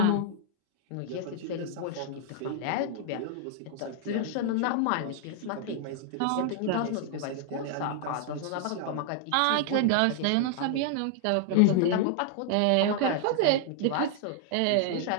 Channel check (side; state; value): both; different; correlation 0.00